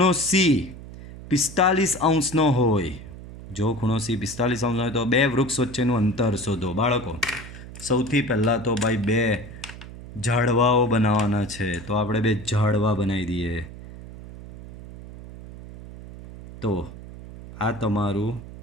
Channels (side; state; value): right; noise; hum, 14 dB below the sound